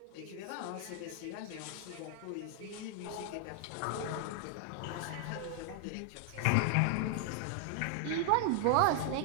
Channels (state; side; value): different; both; correlation 0.00